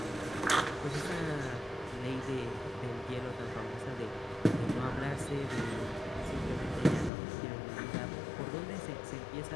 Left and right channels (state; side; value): drops out; right; at 7.1 s